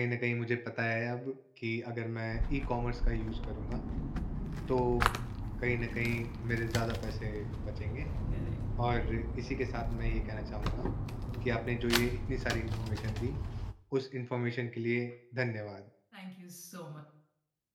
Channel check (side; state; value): both; identical; correlation 1.00